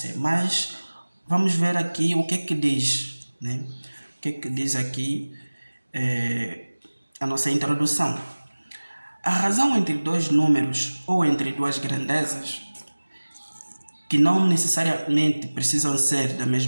Mas vamos ver aqui o que é que diz, O que é que diz aqui a nossa introdução. A razão entre dois números ou entre duas grandezas, que não necessariamente precisam ser da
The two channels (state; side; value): inverted; both; correlation -1.00